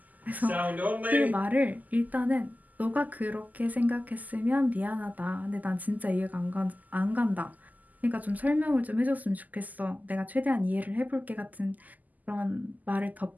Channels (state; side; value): late; left; 0.081 ms